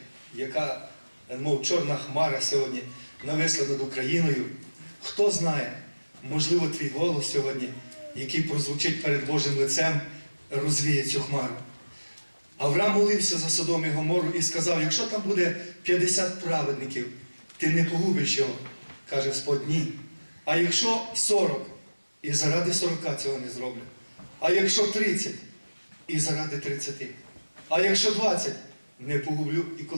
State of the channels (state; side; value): inverted; both; correlation -1.00